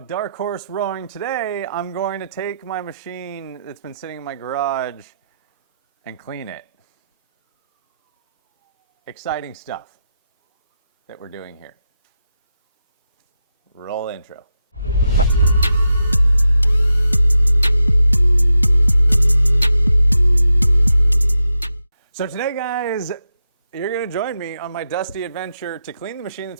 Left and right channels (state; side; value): inverted; both; correlation -0.87